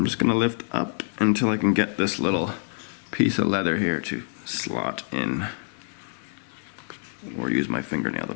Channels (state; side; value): silent; right; digital silence